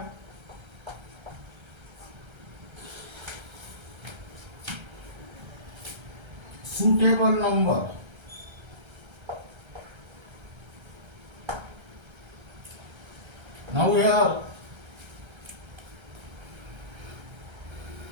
suitable number. Now here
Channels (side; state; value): left; late; 1.3 ms